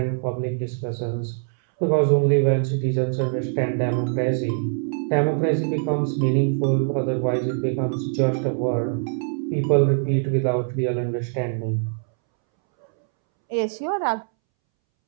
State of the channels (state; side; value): silent; left; 63 dB below the other